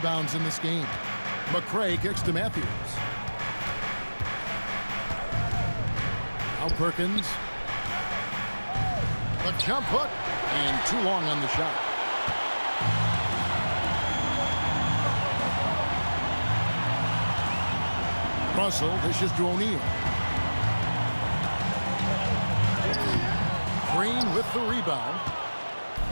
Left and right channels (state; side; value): inverted; both; correlation -1.00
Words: in this game. McCray kicks to Matthews. Now Perkins. The jump hook. And too long on the shot. Russell dishes to O'Neal. Green with the rebound.